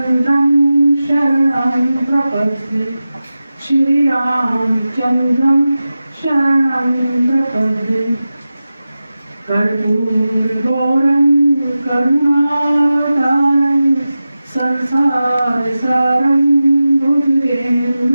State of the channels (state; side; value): inverted; both; correlation -0.94